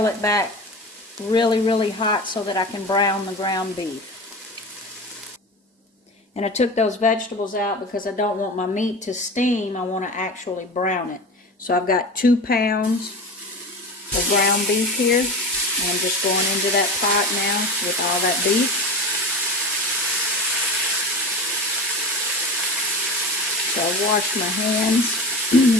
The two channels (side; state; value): both; normal; correlation 0.29